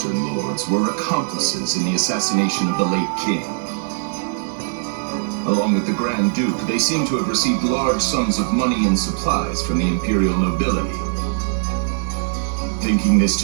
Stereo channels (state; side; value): silent; left; 61 dB below the other